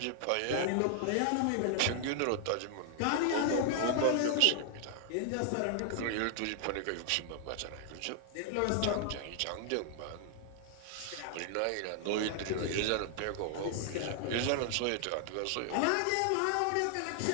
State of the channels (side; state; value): both; different; correlation 0.00